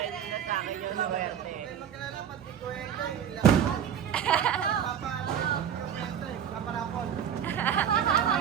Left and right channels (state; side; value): quieter; left; 8.8 dB